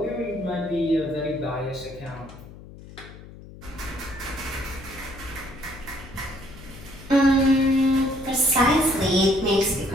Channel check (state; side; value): noise; left; hum, 17 dB below the sound